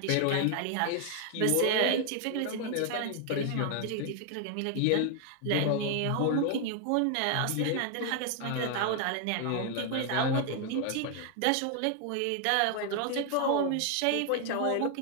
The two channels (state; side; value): different; both; correlation 0.00